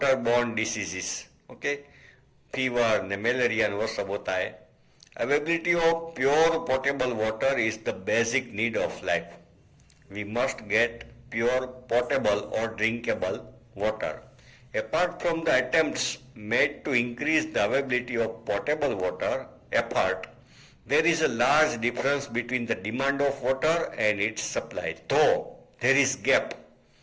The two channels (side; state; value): both; identical; correlation 1.00